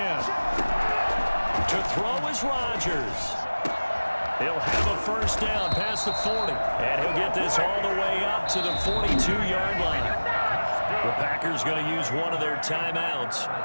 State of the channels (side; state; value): both; inverted; correlation -1.00